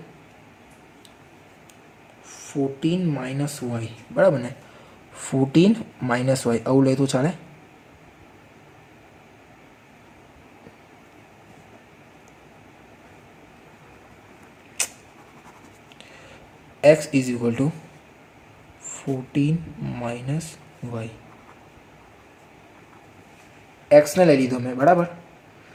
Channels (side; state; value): both; identical; correlation 1.00